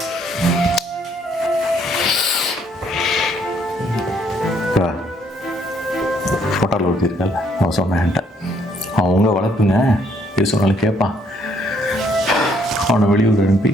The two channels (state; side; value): normal; both; correlation 0.68